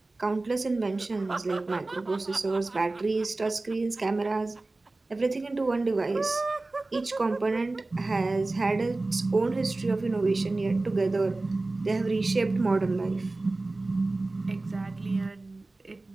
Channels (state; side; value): quieter; left; 3.1 dB